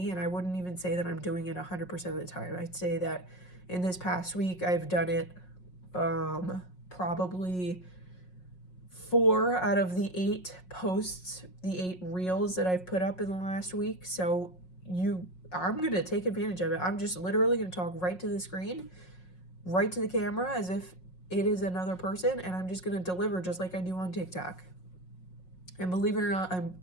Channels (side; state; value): right; late; 5.5 ms